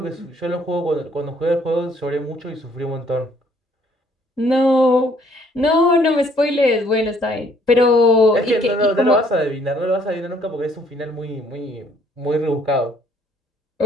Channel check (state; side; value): normal; both; correlation 0.63